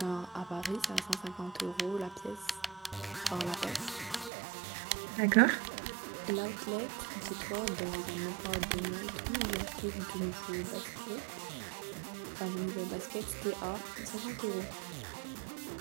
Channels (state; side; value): drops out; left; at 4.3 s